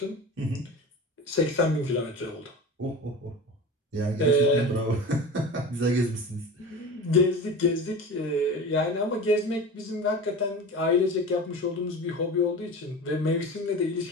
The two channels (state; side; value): normal; both; correlation 0.32